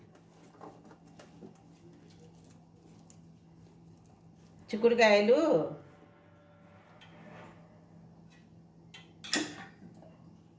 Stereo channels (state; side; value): identical; both; correlation 1.00